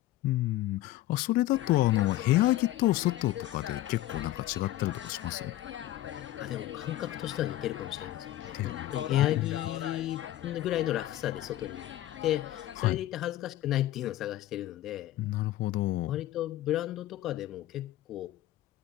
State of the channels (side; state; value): right; quieter; 14.8 dB